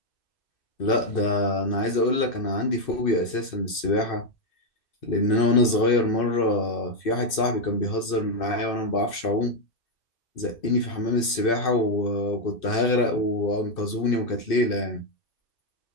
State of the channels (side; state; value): right; late; 2.6 ms